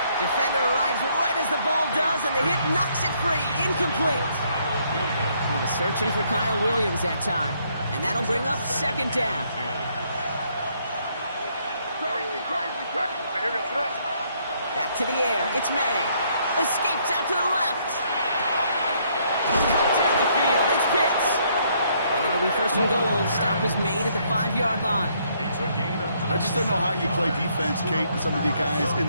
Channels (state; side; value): inverted; both; correlation -0.69